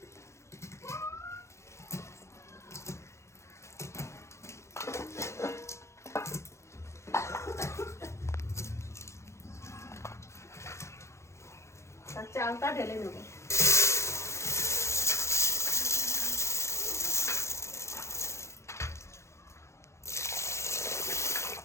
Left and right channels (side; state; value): right; late; 0.14 ms